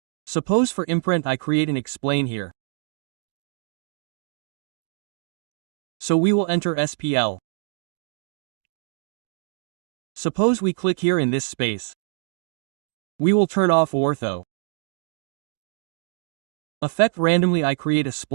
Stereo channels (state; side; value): silent; left; digital silence